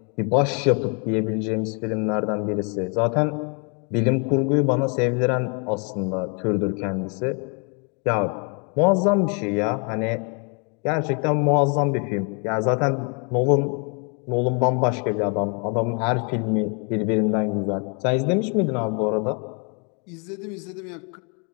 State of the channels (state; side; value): quieter; right; 36.5 dB